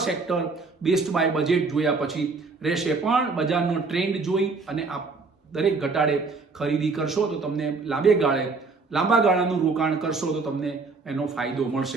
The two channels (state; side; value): quieter; left; 4.2 dB